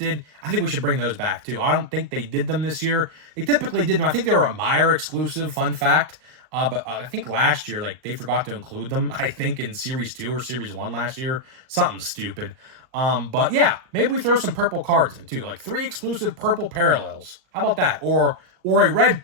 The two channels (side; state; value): left; late; 39 ms